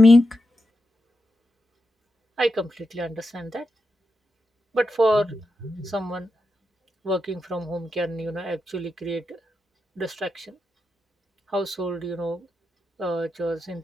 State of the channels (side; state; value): both; normal; correlation 0.88